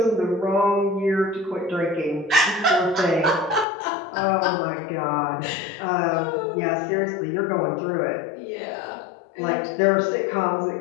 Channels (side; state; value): right; drops out; at 3.7 s